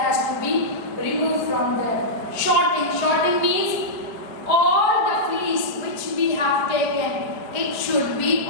has to be removed from there. Shorting. Shorting means all the fleece which we have taken, it should be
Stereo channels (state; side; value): late; right; 4.8 ms